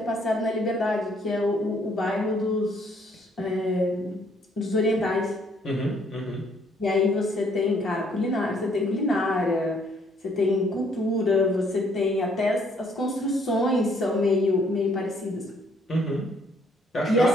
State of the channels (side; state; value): both; normal; correlation 0.65